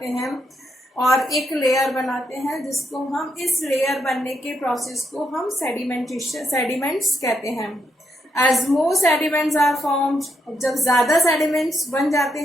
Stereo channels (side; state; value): both; normal; correlation 0.79